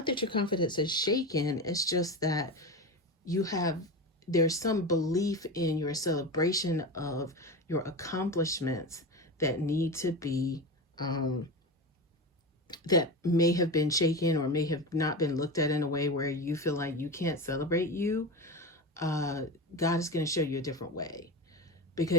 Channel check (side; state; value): both; normal; correlation 0.23